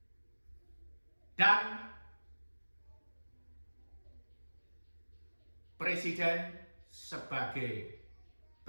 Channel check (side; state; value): both; inverted; correlation -1.00